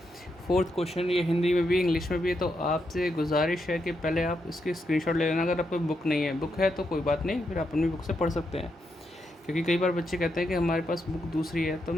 फोर्थ क्वेश्चन ये हिंदी में भी इंग्लिश में भी है, तो आपसे गुजारिश है कि पहले आप इसकी स्क्रीनशॉट ले लेना। अगर आपको बुक नहीं है, बुक है तो कोई बात नहीं, फिर आप अपनी बुक से पढ़ सकते हैं। क्योंकि कई बार बच्चे कहते हैं कि हमारे पास बुक दूसरी है, तो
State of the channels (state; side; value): normal; both; correlation 0.82